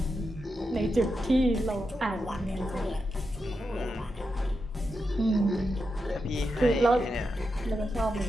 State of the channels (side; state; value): both; normal; correlation 0.87